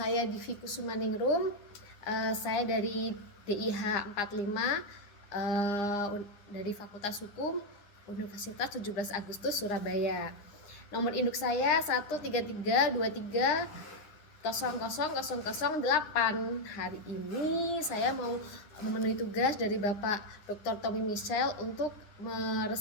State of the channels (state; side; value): late; right; 10 ms